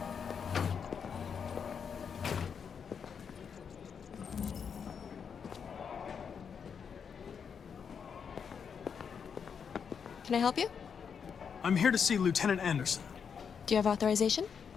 Can I help you? I'm here to see Lieutenant Anderson. Do you have authorization?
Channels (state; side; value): quieter; right; 6.8 dB